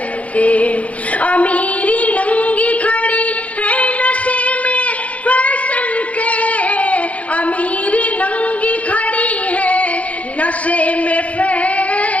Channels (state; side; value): late; right; 0.067 ms